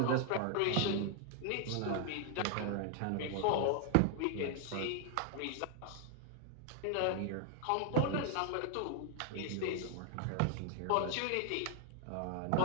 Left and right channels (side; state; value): both; different; correlation 0.00